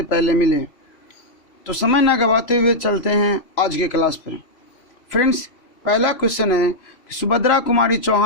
पहले मिले। तो समय न गवाते हुए चलते हैं आज के क्लास पर। फ्रेंड्स, पहला क्वेश्चन है कि सुभद्रा कुमारी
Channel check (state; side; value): late; right; 3.0 ms